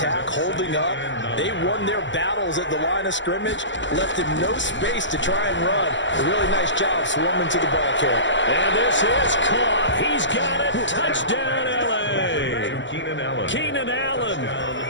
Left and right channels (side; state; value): right; late; 0.54 ms